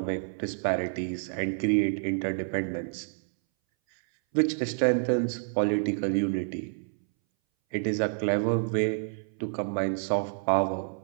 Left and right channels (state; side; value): silent; left; 59 dB below the other